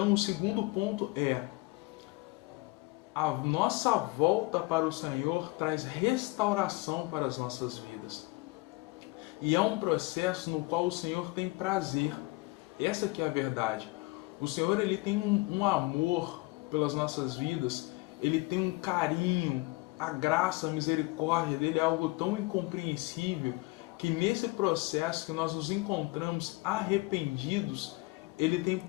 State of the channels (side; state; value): right; quieter; 24.0 dB